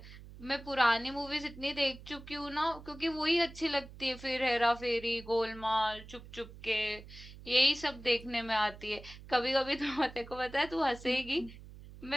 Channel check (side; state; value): right; noise; hum, 16 dB below the sound